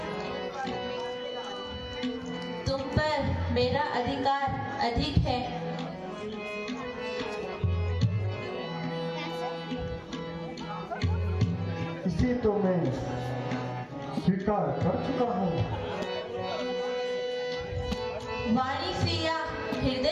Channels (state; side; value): identical; both; correlation 1.00